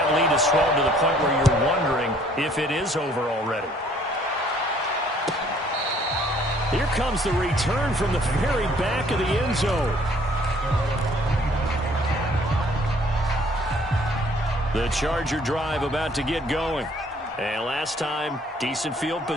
lead has swelled to the point where you're wondering if it is over already. Here comes the return from the very back of the end zone. The Charger drive about to get going. And last time, decent field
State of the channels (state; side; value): normal; both; correlation 0.60